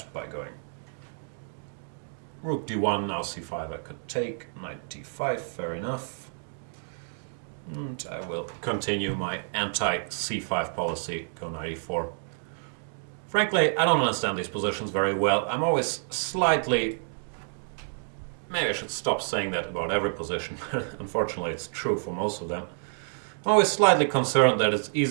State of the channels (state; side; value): silent; left; digital silence